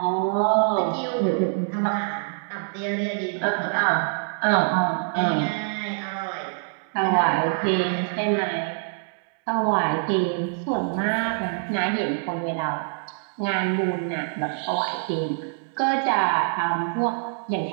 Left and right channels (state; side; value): silent; left; digital silence